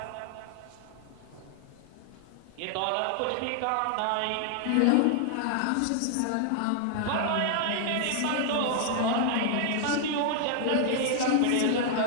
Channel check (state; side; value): different; both; correlation 0.00